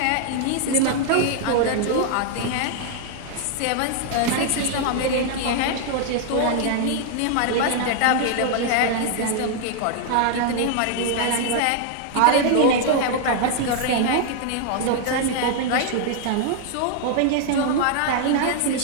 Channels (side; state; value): both; different; correlation 0.00